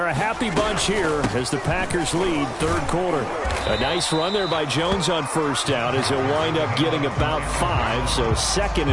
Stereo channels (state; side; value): identical; both; correlation 1.00